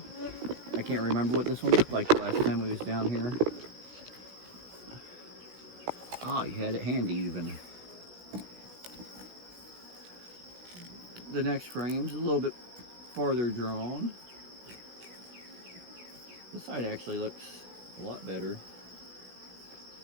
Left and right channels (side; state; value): left; late; 17 ms